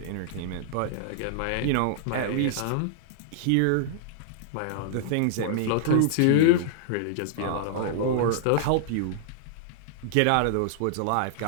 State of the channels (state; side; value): different; both; correlation -0.01